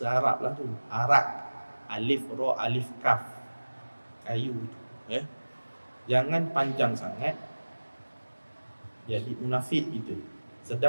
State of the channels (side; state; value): both; inverted; correlation -1.00